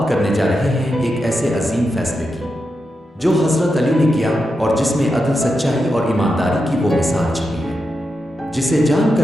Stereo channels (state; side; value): normal; both; correlation 0.87